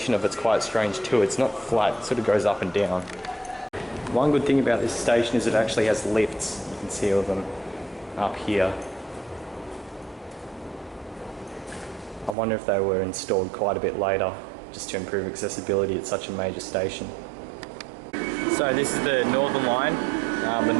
of it's quite strange too. It's not flat, it sort of goes up and down. One good thing about this station is it actually has lifts. You can see all of them up here. I wonder if they were installed quite a bit later, just to improve accessibility at such a major station. So this is the Northern line, the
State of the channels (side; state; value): left; drops out; at 12.4 s